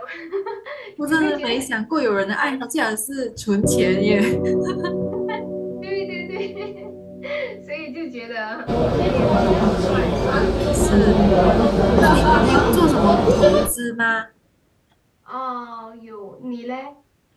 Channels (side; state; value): both; identical; correlation 1.00